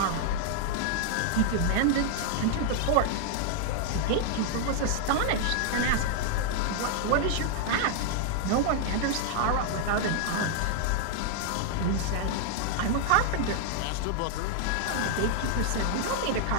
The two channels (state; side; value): different; both; correlation 0.00